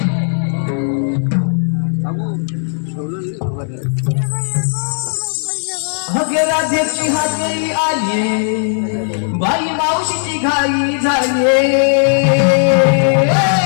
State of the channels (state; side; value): silent; right; digital silence